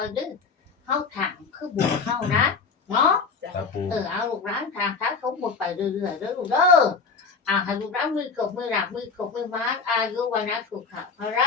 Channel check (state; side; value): quieter; right; 5.0 dB